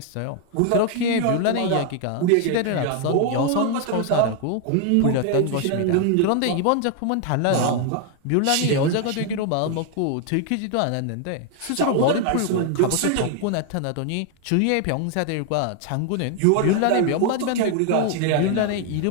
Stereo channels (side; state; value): both; different; correlation 0.00